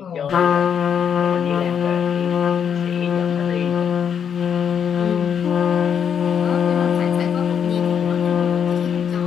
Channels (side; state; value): right; quieter; 7.8 dB